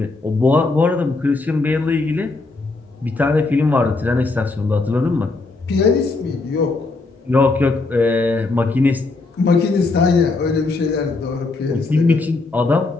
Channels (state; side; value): quieter; right; 3.5 dB